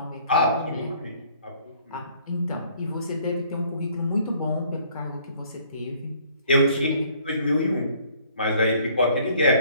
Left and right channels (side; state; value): both; inverted; correlation -0.59